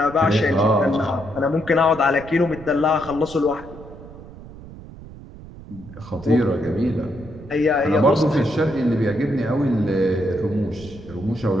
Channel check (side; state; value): right; noise; rumble, 16 dB below the sound